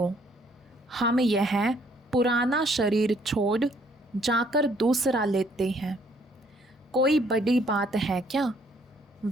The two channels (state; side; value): normal; both; correlation 0.65